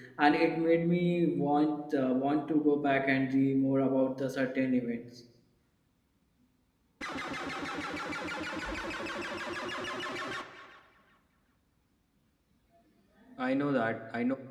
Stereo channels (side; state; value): both; identical; correlation 1.00